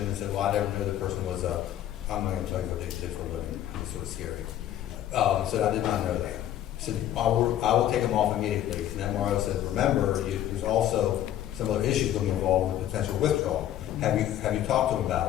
and said, well, I never knew the person was I'm not going to tell you what they did for a living. It's sort of scary. So I did not know that. He said, I will take them off immediately. And the MRO said, remember, there's also some other issues going to be involved with potential withdrawal. Have you talked to him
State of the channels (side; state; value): right; quieter; 11.8 dB